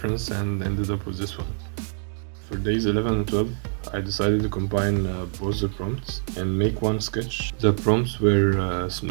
and ended up with this one. For days 11 and 12, I decided to combine both the prompts and make one sketch. The prompts were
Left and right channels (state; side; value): silent; left; 62 dB below the other